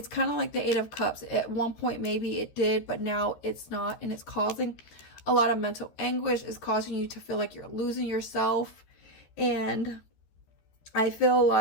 kind of like the 8 of Cups. At one point, maybe it did, but now it's not. And it's causing a lot of mental anguish. It's causing you to feel like you're losing yourself. And I feel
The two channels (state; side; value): late; right; 13 ms